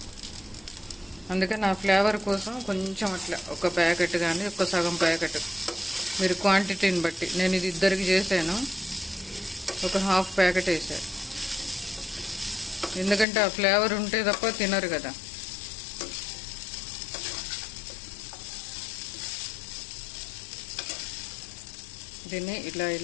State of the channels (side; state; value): right; drops out; at 13.2 s